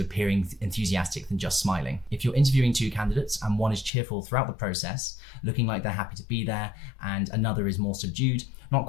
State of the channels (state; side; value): drops out; right; at 3.9 s